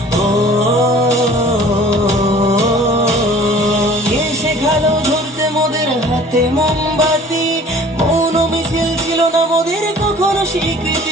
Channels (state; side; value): normal; both; correlation 0.49